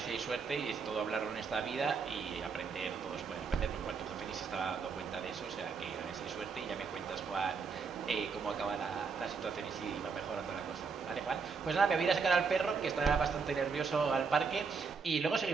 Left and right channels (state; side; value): quieter; left; 5.3 dB